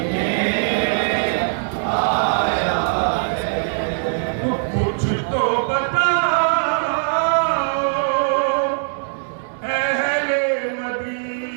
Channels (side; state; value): left; silent; digital silence